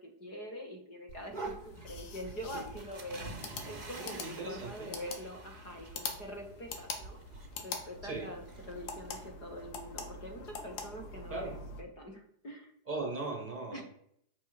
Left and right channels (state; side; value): late; right; 4.8 ms